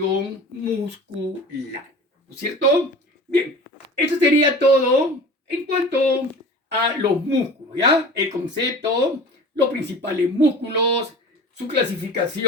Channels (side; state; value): both; normal; correlation 0.39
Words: muscular. ¿No es cierto? Bien, eso sería todo en cuanto a los músculos, ¿ya? El concepto, los principales músculos, su